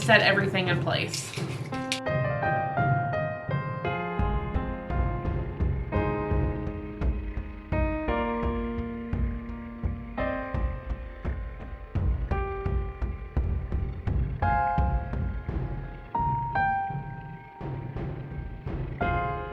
everything in place.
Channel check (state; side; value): identical; both; correlation 1.00